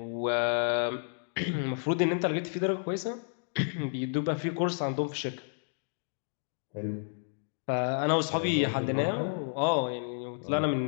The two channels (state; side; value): silent; right; digital silence